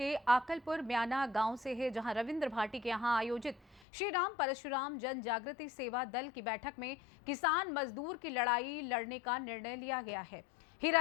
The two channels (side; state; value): right; drops out; at 3.8 s